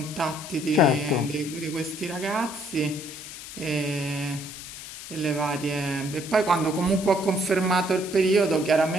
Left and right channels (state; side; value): noise; left; hiss, 12 dB below the sound